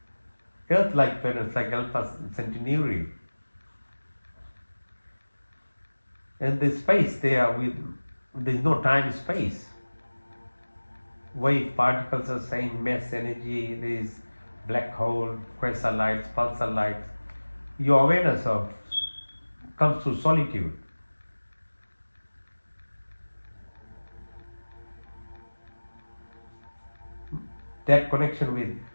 Earth-like planets like Alpha Centauri, and the space there there is no time space. Wave particles are saying mass energy, there is black hole, quasar lights, pulsar lights. Your awareness of comes through solitude. That connection with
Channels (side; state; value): both; inverted; correlation -1.00